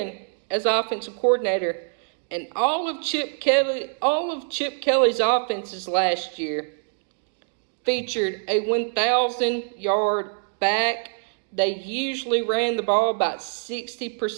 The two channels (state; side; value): silent; left; digital silence